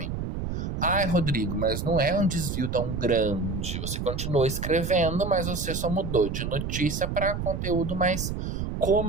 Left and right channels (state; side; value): noise; right; rumble, 3 dB below the sound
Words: Ai, Rodrigo, mas não é um desvio tão grande. Você continuou escrevendo, mas você só mudou de notícia para conteúdo mais